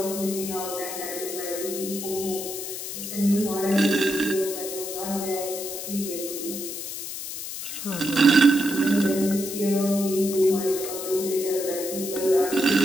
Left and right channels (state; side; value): noise; left; hiss, 7 dB below the sound